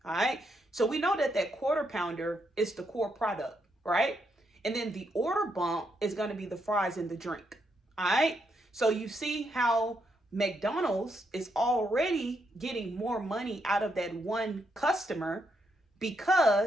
All right. So we know that that quarter pounder is the core product, right? And then the order bump is going to be the fries and the drink. All right. So you see how McDonald's is already getting more money out of that one customer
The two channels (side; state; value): both; normal; correlation 0.79